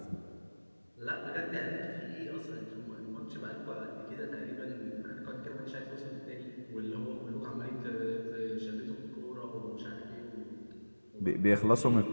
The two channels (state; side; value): inverted; both; correlation -1.00